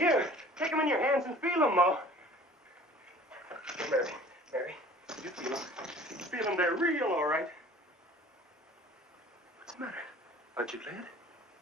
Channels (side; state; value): both; normal; correlation 0.48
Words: take them in your hands and feel them, Ma. Here, Mary, you feel them. Feel them, they're real, all right. What's the matter? Aren't you glad?